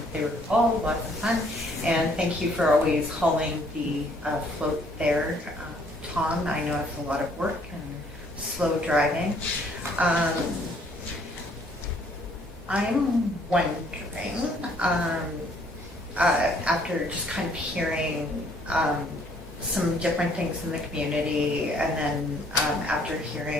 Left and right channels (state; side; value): normal; both; correlation 0.63